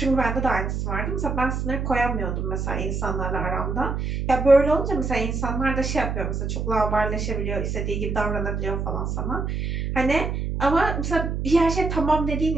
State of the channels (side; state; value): right; noise; hum, 2 dB below the sound